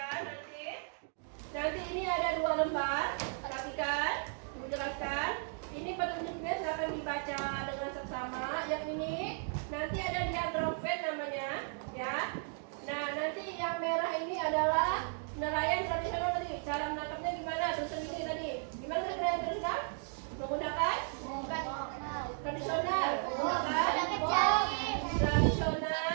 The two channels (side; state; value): left; silent; 54 dB below the other